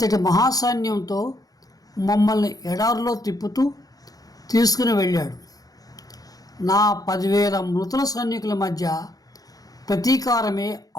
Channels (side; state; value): right; late; 0.18 ms